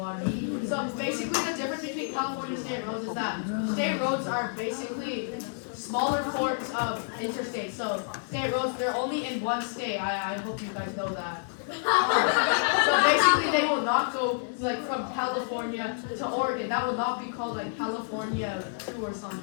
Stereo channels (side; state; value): right; silent; digital silence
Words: So basically the difference between California state roads is that state roads are basically smaller forms of interstates. So state roads, they're only in one state. I hope you guys know that. So basically they will not go like from California to Oregon. That will not be called like California 2 or